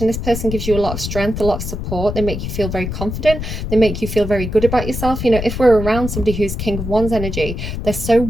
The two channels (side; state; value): left; noise; rumble, 5 dB below the sound